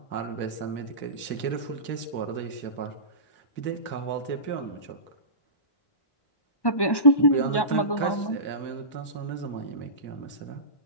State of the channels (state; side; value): late; right; 1.1 ms